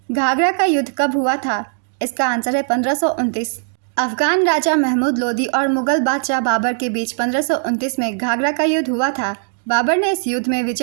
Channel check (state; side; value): silent; left; digital silence